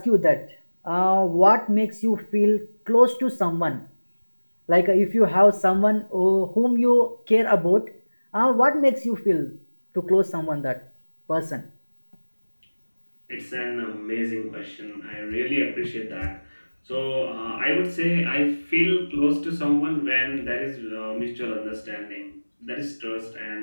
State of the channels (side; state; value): both; inverted; correlation -1.00